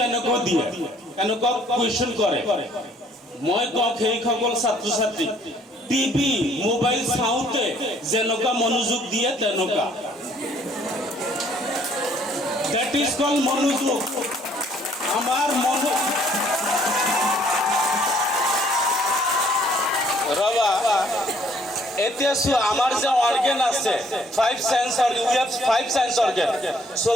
দিয়ে, এনেকুৱা কুৱেশ্যন কৰে, মই কওঁ সেইসকল ছাত্ৰ ছাত্ৰী টিভি মোবাইল চাওঁতে যেনেকুৱা মনোযোগ দিয়ে তেনেকুৱা, দেট ইজ কল মনোযোগ। আমাৰ ৰবা এতিয়া আমাৰ যে অৰ্গেন আছে 5 sense organ, we have 5 sense organ,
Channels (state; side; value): normal; both; correlation 0.62